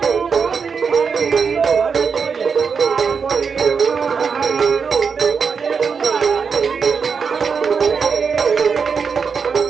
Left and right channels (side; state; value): left; quieter; 5.8 dB